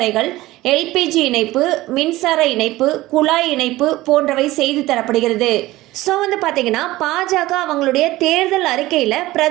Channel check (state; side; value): quieter; left; 17.7 dB